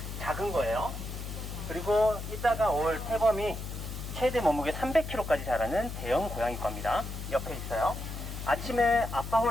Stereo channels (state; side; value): noise; left; hum, 7 dB below the sound